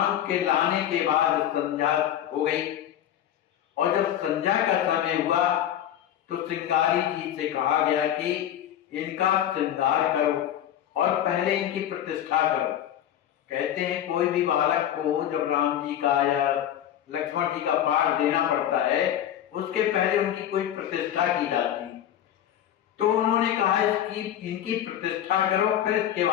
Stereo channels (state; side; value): quieter; right; 10.9 dB